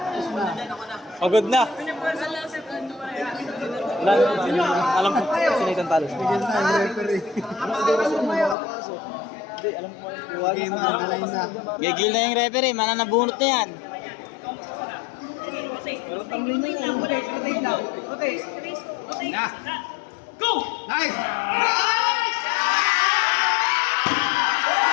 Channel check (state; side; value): drops out; right; at 8.6 s